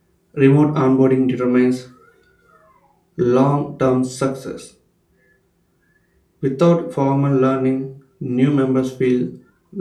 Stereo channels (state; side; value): identical; both; correlation 1.00